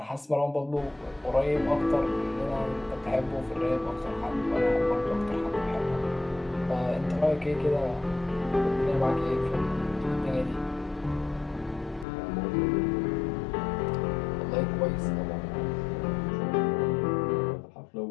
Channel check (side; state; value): right; drops out; at 12.1 s